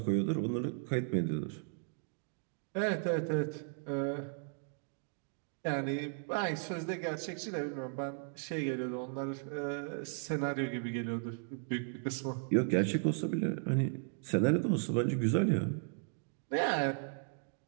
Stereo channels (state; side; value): silent; left; 54 dB below the other